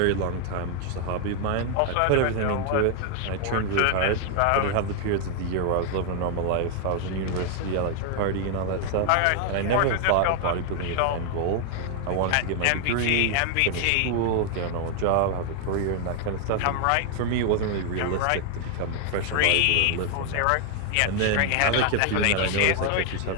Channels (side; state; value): both; different; correlation 0.00